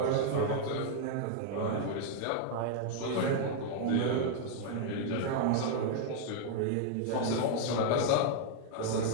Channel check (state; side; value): different; both; correlation 0.00